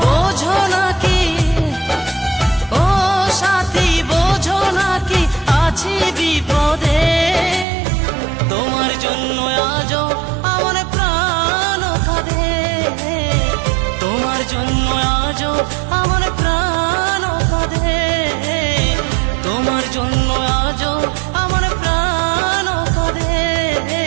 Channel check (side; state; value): left; drops out; at 7.7 s